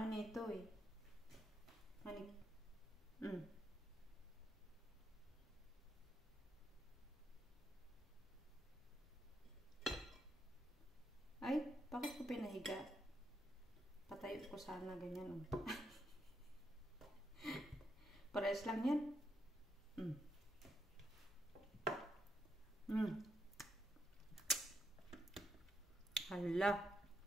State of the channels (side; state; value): both; normal; correlation 0.80